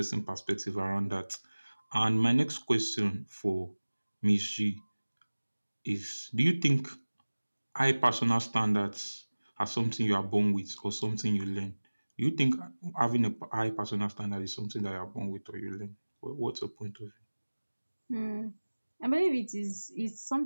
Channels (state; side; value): inverted; both; correlation -1.00